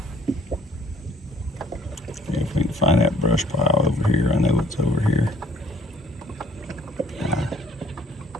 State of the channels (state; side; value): normal; both; correlation 0.57